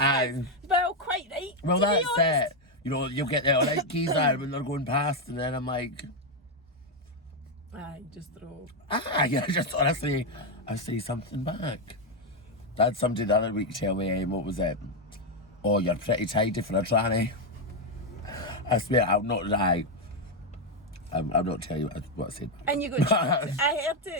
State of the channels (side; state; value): both; normal; correlation 0.04